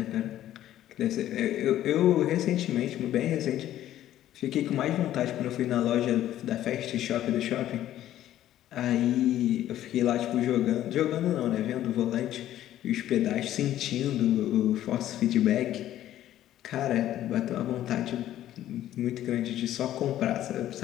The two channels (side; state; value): right; quieter; 12.7 dB